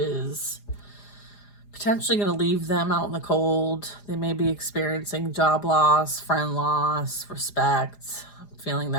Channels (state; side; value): late; right; 4.9 ms